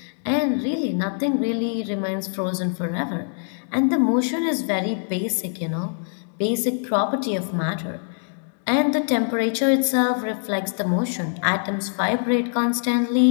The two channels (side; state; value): right; silent; 63 dB below the other